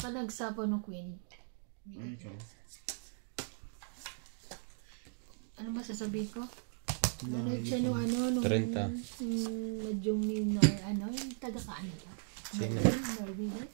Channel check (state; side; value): silent; left; digital silence